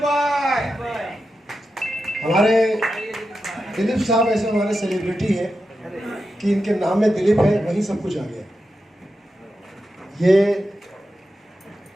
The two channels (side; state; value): both; normal; correlation 0.89